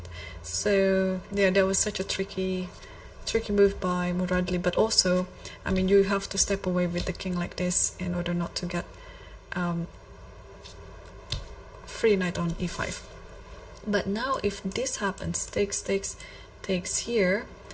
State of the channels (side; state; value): both; identical; correlation 1.00